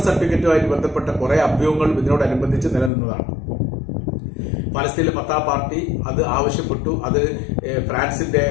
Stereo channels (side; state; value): right; drops out; at 2.9 s